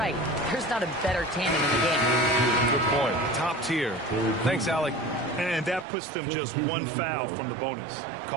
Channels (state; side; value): drops out; left; at 5.9 s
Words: there's not a better tandem in the game. Good point. Top tier. Thanks, Allie. And that puts them just 1 foul from the bonus.